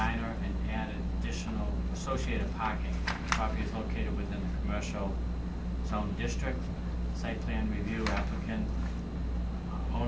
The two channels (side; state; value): both; identical; correlation 1.00